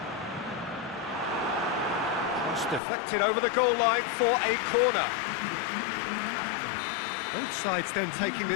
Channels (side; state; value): right; drops out; at 2.8 s